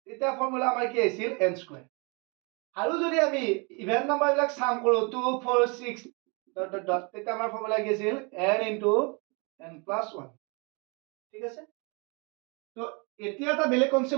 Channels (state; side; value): quieter; left; 31.8 dB